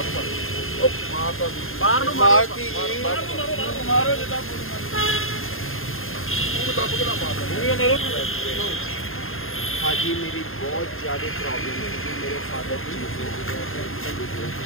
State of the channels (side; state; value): right; late; 0.60 ms